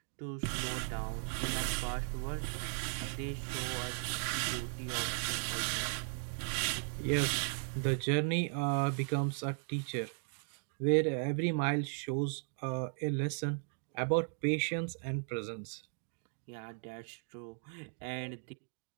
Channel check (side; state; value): left; silent; 53 dB below the other